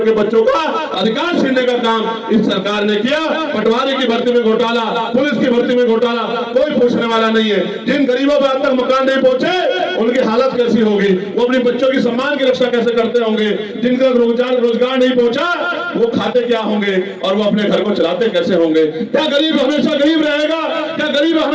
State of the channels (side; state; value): both; identical; correlation 1.00